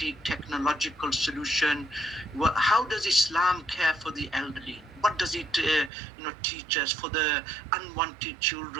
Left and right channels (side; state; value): left; drops out; at 5.9 s